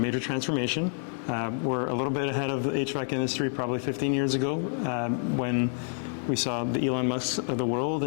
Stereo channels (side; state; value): right; silent; digital silence